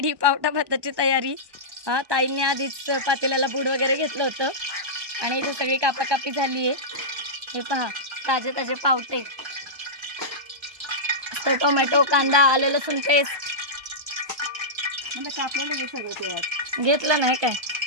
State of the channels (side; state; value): left; late; 1.2 ms